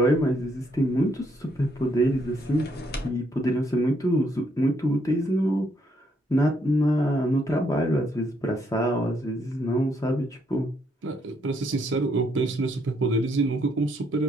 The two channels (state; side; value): normal; both; correlation 0.72